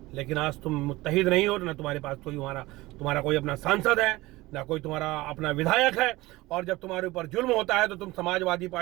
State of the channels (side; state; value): left; quieter; 19.7 dB